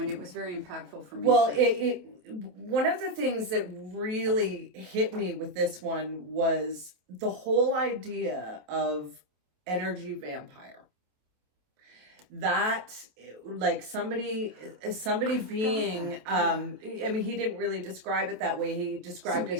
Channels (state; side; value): late; left; 27 ms